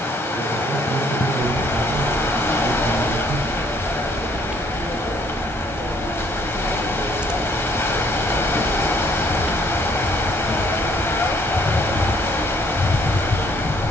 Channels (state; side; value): normal; both; correlation 0.64